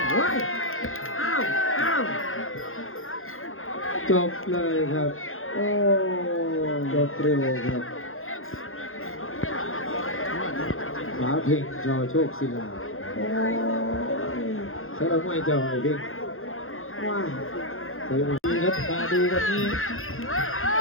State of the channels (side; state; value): right; late; 0.60 ms